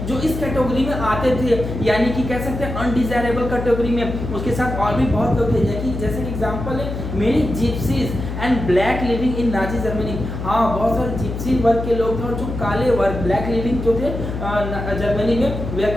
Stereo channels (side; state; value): left; noise; hum, 6 dB below the sound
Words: जो इस कैटेगरी में आते थे, यानी कि कह सकते हैं अनडिजायरेबल कैटेगरी में। उसके साथ और भी बहुत लोग थे, जैसे कि एग्जांपल है many gypsies and black living in Nazi Germany. हाँ, बहुत सारे जिप्सी वर्ग के लोग थे और जो काले वर्ग ब्लैक लिविंग जो थे जर्मनी में, वे are